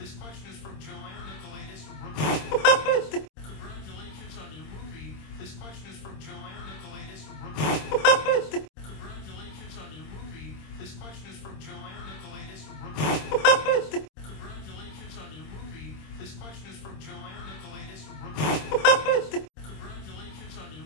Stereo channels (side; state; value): right; late; 26 ms